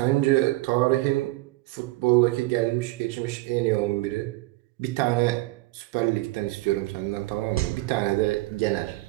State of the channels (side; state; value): left; quieter; 20.3 dB